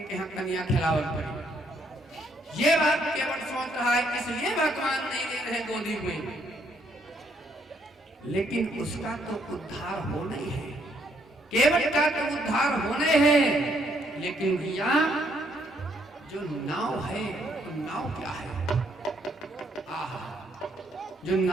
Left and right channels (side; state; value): both; normal; correlation 0.70